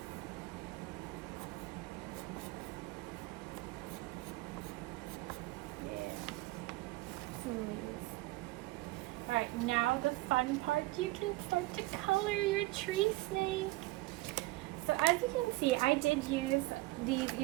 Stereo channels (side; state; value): left; quieter; 19.9 dB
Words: Alright, now the fun part, you can start to color your tree snake. So as you can see, I did use these